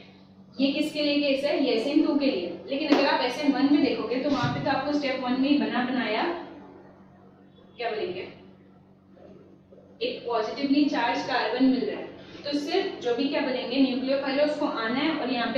ये किसके लिए केस है, ये SN2 के लिए। लेकिन अगर आप SN1 में देखोगे तो वहां पे तो आपको स्टेप 1 में ही बना बनाया क्या बोलेंगे एक पॉजिटिवली चार्ज कार्बन मिल रहा है। तो सिर्फ जो भी क्या बोलेंगे न्यूक्लियोफाइल है उसको आना है और यहाँ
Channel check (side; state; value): both; identical; correlation 1.00